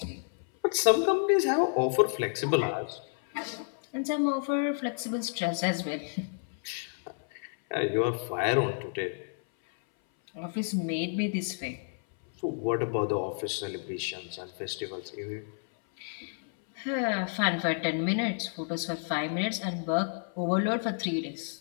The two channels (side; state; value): right; silent; 58 dB below the other